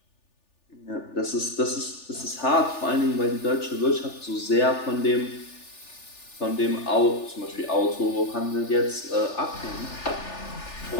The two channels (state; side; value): late; right; 3.4 ms